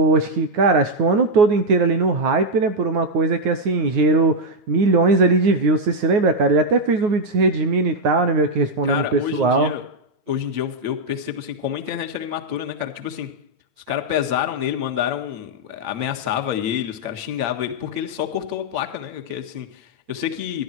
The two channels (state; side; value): late; left; 8.7 ms